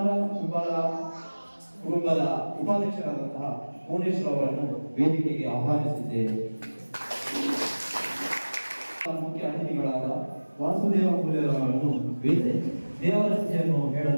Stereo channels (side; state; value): both; inverted; correlation -1.00